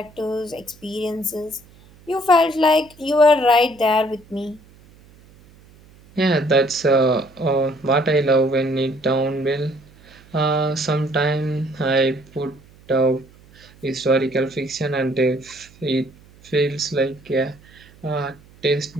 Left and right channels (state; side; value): noise; right; hum, 26 dB below the sound